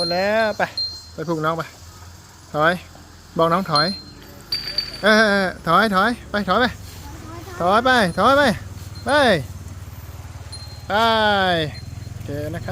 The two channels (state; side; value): identical; both; correlation 1.00